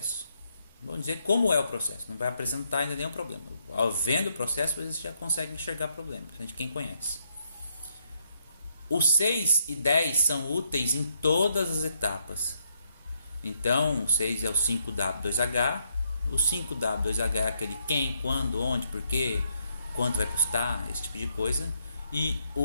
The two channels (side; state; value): both; inverted; correlation -0.76